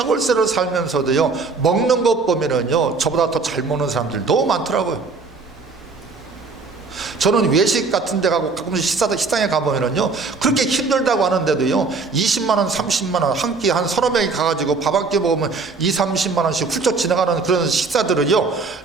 살면서도요, 먹는 것 보면은요, 저보다 더 잘 먹는 사람들 너무 많더라고요. 저는 외식 같은 데 가고 가끔씩 식당에 가보면은요, 그렇게 힘들다고 하는데도요, 20만원, 30만원, 한 끼 한 서너 명이 가가지고 밥 한 끼 먹으면 20-30만원씩 훌쩍 지나가는 그런 식사들은요,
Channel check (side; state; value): left; quieter; 4.3 dB